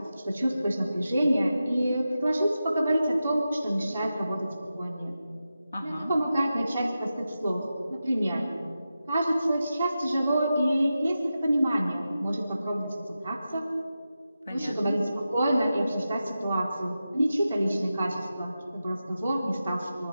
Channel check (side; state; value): both; inverted; correlation -0.91